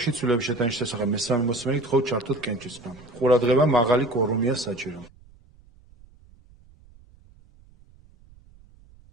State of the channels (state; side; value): noise; right; rumble, 26 dB below the sound